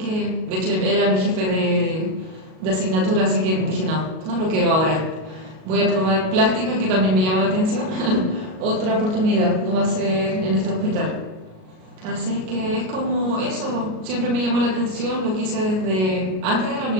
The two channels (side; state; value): left; late; 38 ms